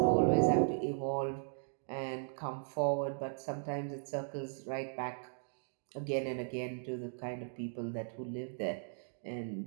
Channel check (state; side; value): silent; left; digital silence